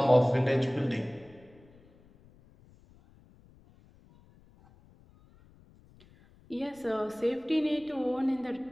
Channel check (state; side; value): noise; left; rumble, 27 dB below the sound